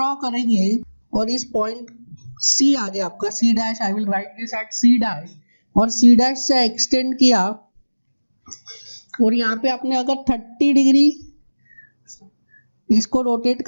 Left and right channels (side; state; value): both; inverted; correlation -1.00